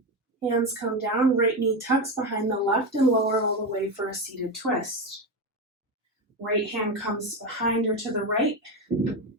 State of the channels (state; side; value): normal; both; correlation 0.15